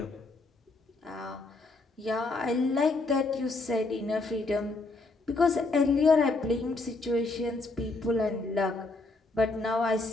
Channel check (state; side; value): quieter; right; 3.3 dB